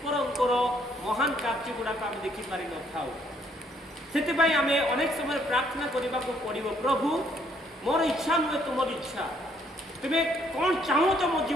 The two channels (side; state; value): both; normal; correlation 0.68